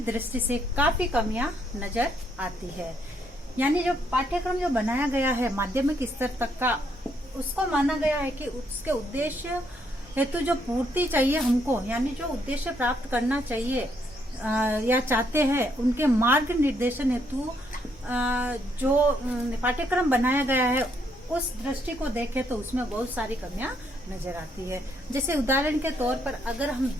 दृष्टि से काफी कमियां नजर आती है। यानी जो पाठ्यक्रम जो बनाया गया है माध्यमिक स्तर तक का, उसको माना गया है कि उसके उद्देश्य हेतु जो पूर्ति चाहिए हमको, यानी जो उद्देश्य प्राप्त करना चाहिए या चाहते हैं उनके मार्ग निर्देशन हेतु जो पाठ्यक्रम बनाया गया है उस दृष्टि को देखें तो उसमें बहुत सारी कमियां नजर आती है। जैसे उदाहरण के तौर पर अगर हम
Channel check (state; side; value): normal; both; correlation 0.73